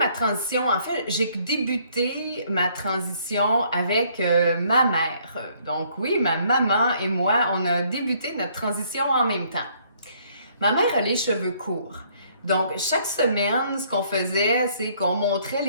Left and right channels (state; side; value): inverted; both; correlation -0.64